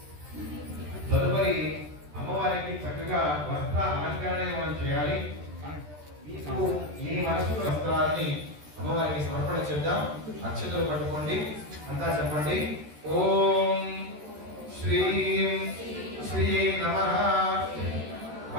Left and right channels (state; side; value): late; left; 13 ms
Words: తదుపరి అమ్మవారికి చక్కగా వస్త్ర అలంకరణ మనం చేయాలి. మీ మనసులో వస్త్రాన్ని అమ్మవారికి సమర్పణ చేద్దాం. అక్షతలు పట్టుకోండి. అంతా చెప్పండి. ఓం శ్రీం శ్రీయై నమః